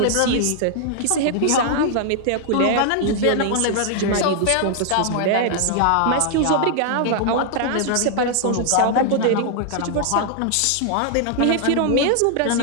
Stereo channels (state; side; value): different; both; correlation 0.00